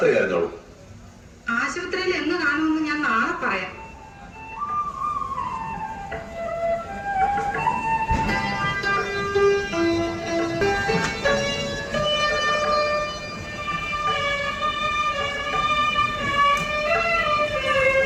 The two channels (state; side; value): identical; both; correlation 1.00